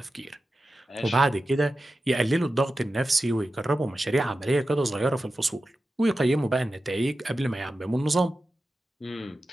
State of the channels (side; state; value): both; normal; correlation 0.93